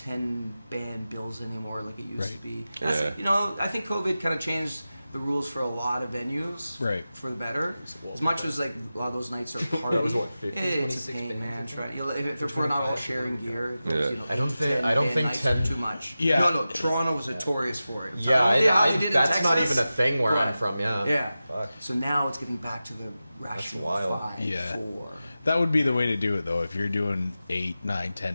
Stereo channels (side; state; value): both; inverted; correlation -0.94